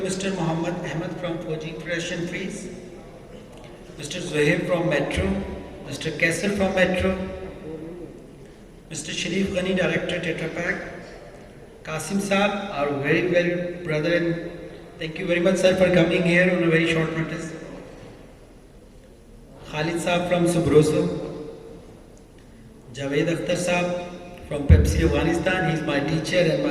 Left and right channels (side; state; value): both; identical; correlation 1.00